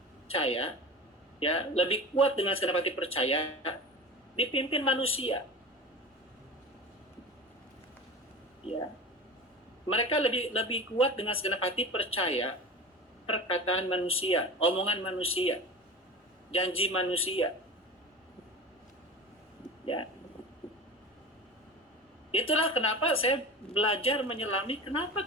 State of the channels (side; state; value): both; normal; correlation 0.32